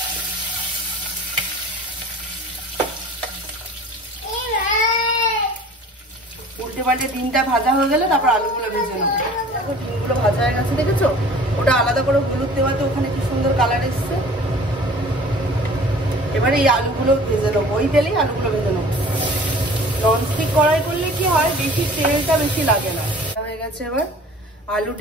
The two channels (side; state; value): both; normal; correlation 0.46